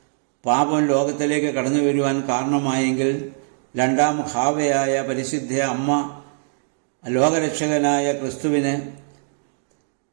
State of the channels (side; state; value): left; silent; digital silence